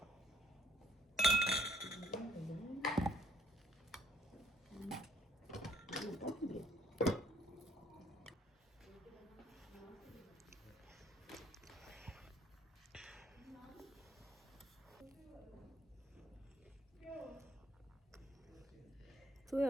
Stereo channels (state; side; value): normal; both; correlation 0.64